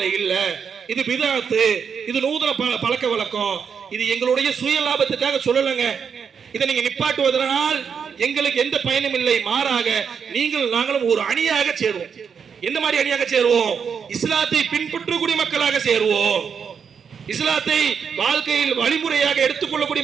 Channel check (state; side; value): quieter; left; 6.7 dB